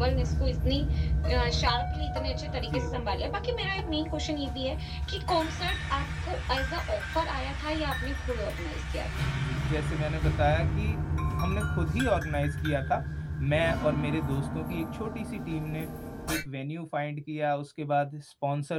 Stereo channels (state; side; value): identical; both; correlation 1.00